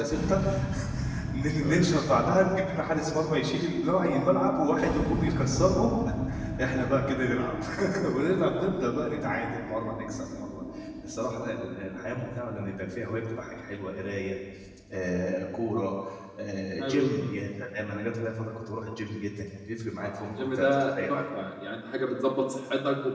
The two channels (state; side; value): identical; both; correlation 1.00